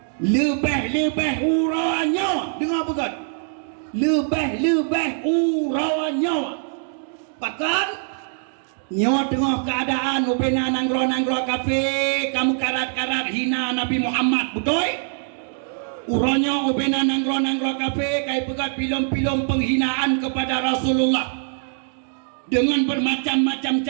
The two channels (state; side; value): silent; left; 64 dB below the other